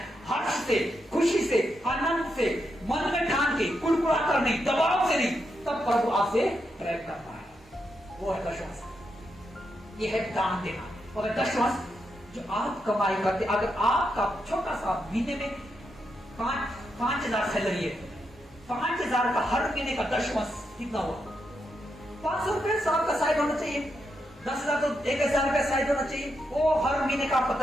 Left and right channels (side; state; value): both; normal; correlation 0.83